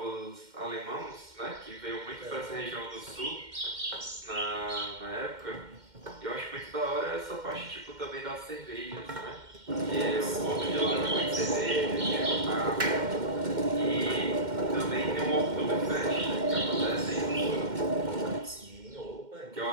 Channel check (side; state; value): left; late; 2.1 ms